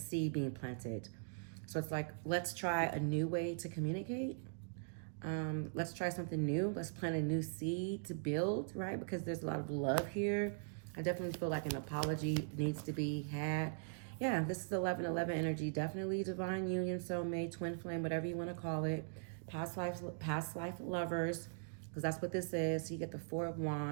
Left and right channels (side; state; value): left; silent; digital silence